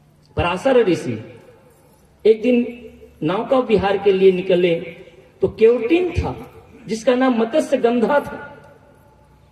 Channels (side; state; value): both; identical; correlation 1.00